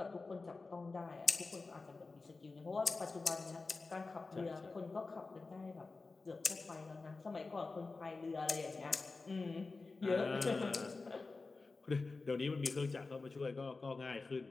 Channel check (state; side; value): quieter; right; 3.8 dB